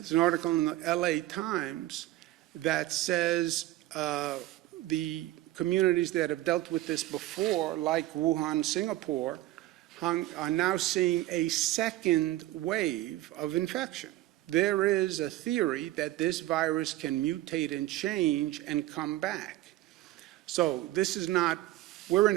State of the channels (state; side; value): quieter; left; 16.0 dB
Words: an article in the LA Times that says the communities that have dealt with this before, like Wuhan, Singapore, are now seeing a second wave of infection. There is a theory that this virus can mutate and change and come back. So this is not, we're